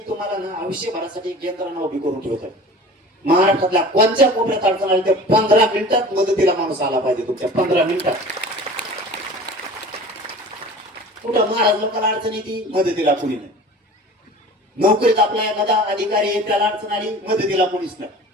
तुम्हाला ना आयुष्यभरासाठी एक यंत्रणा उभी करून ठेवतात. महाराष्ट्रातल्या कोणत्या कोपऱ्यात अडचण आली तर 15 मिनिटात मदतीला माणूस आला पाहिजे. तुमच्या 15 मिनिटात कुठं महाराज लोकांना अडचण येते मदतीला कुणी नाही. नोकरीत आपला एखादा अधिकारी आहे त्याला अडचण आली मदतीला कुणीच नाही.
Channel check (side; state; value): both; normal; correlation 0.40